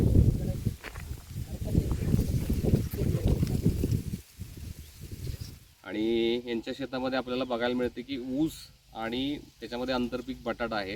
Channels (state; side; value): identical; both; correlation 1.00